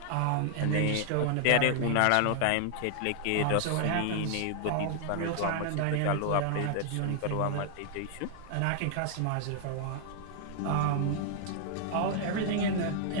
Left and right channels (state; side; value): different; both; correlation 0.00